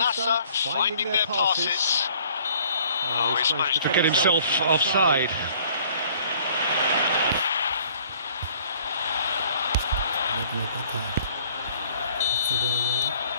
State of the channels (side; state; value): both; inverted; correlation -0.57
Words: finding their passes. Oh, he's managed to get himself offside.